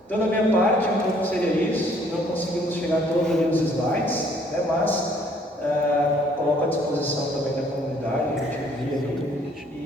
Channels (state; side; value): normal; both; correlation 0.62